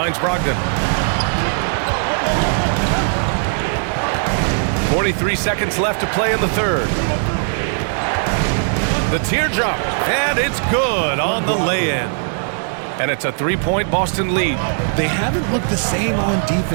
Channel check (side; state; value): left; silent; digital silence